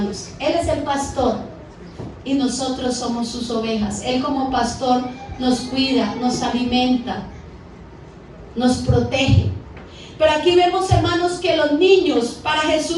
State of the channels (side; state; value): both; identical; correlation 1.00